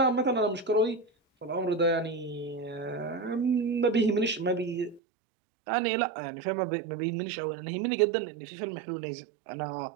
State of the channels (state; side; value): drops out; left; at 5.0 s